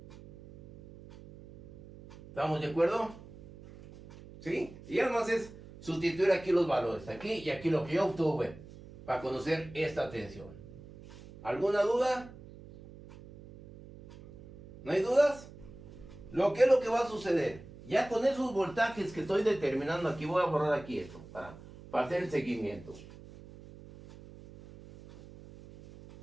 ¿Estamos de acuerdo? ¿Sí? Y además es sustituir aquí los valores, aquí y aquí lo que yo obtuve, para conocer esta tensión. ¿Alguna duda? ¿No hay dudas? ¿Qué es lo que va a suceder? Ya con esos voltajes que estoy determinando aquí, voy a borrar aquí esto, para hacer el seguimiento.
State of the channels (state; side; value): noise; right; hum, 18 dB below the sound